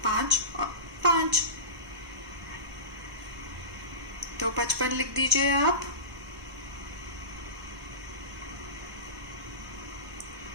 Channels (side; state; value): left; late; 1.2 ms